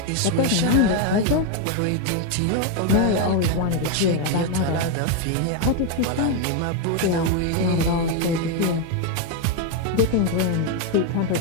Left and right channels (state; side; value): different; both; correlation 0.01